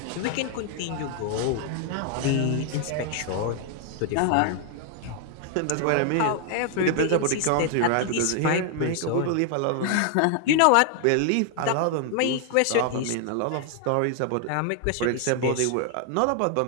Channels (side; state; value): both; different; correlation 0.00